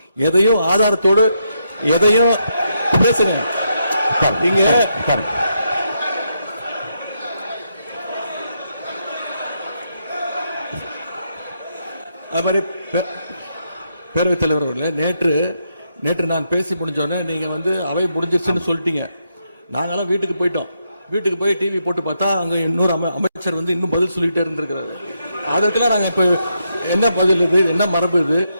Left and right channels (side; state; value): both; inverted; correlation -0.80